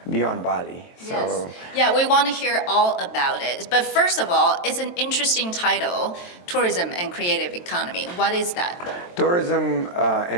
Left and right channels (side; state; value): right; late; 23 ms